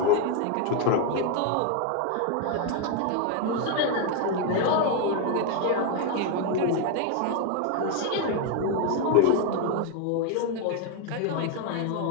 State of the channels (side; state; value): both; different; correlation 0.01